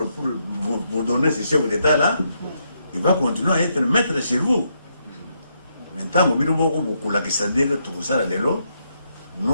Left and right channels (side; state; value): both; inverted; correlation -0.78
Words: pour vous donner ce chef d'État-là. Il va continuer à être maître chez vous. Maintenant, Moumiro, beaucoup la question de tout ça,